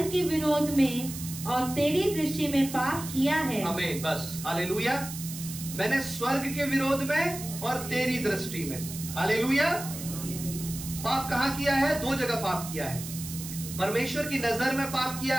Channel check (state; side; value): noise; right; hiss, 10 dB below the sound